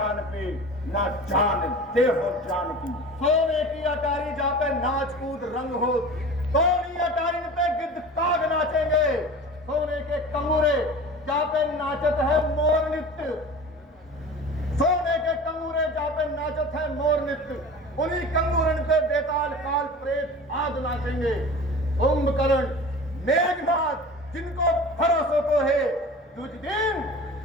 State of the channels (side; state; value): both; normal; correlation 0.37